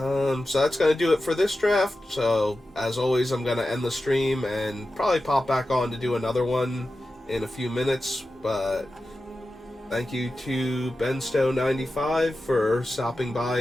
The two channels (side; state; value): both; normal; correlation 0.93